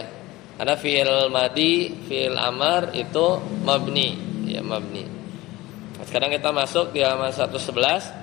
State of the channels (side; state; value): right; quieter; 19.0 dB